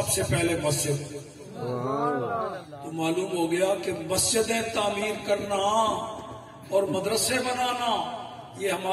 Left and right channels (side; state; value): both; identical; correlation 1.00